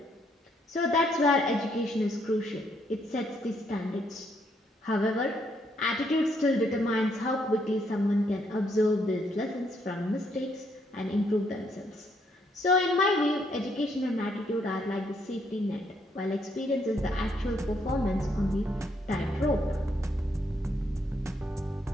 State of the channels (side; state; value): both; normal; correlation 0.73